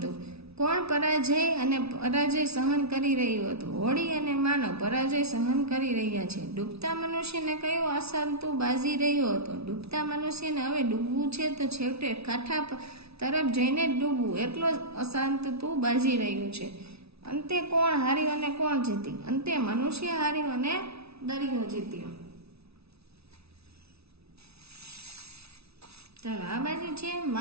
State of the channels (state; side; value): late; left; 0.79 ms